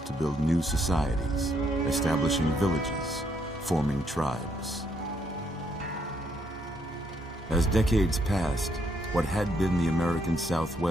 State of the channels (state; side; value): normal; both; correlation 0.73